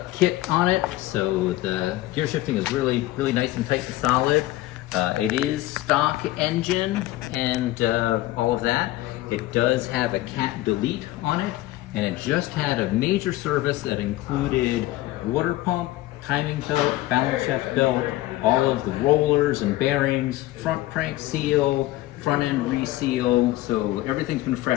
kit on it, so the gear shifting is really nice and tight and solid. It is stock engine and all of that. It does have a cat delete on it, and it just had a major service that included water pump, timing belt, balance shaft belt, all of the rollers and bearings, front crank seal, front end reseal, so everything's been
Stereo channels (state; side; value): quieter; right; 16.6 dB